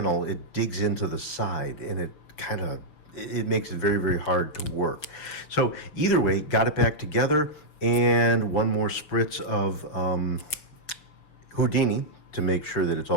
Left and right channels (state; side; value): late; right; 6.4 ms